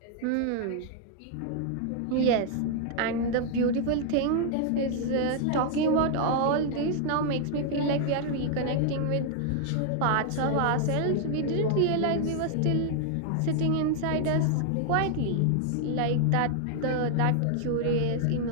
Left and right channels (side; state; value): both; different; correlation 0.00